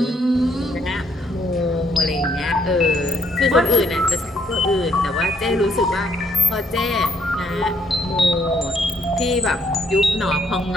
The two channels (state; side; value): normal; both; correlation 0.70